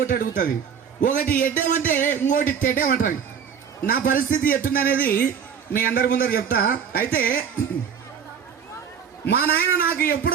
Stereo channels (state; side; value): quieter; left; 7.3 dB